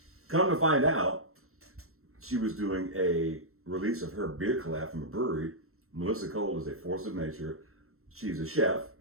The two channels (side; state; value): left; late; 0.63 ms